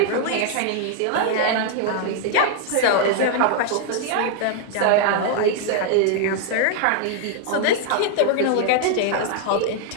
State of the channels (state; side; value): different; both; correlation 0.00